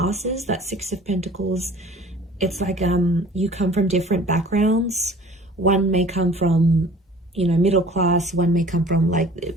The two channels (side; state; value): both; normal; correlation 0.48